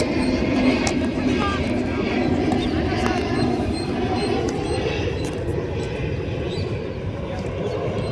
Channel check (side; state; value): both; identical; correlation 1.00